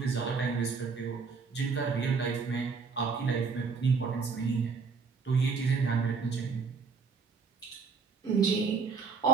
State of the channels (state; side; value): quieter; left; 5.1 dB